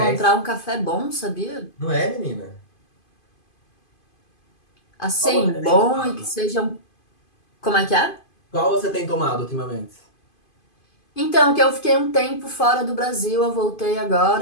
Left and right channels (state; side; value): late; right; 2.5 ms